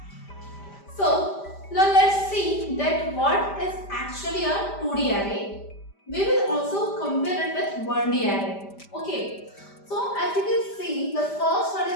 So now let's see that what is actually a 2D array. We will also compare it with 1D array. Okay. So as you can see, the first one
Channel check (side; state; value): right; late; 5.0 ms